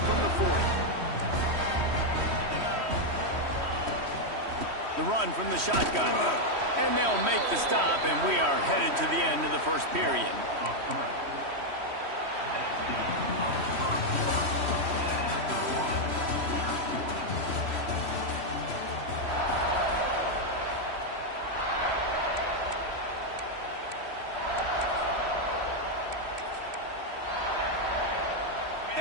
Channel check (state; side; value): late; left; 3.1 ms